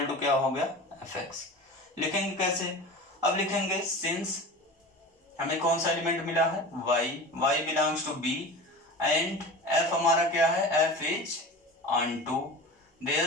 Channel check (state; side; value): normal; both; correlation 0.34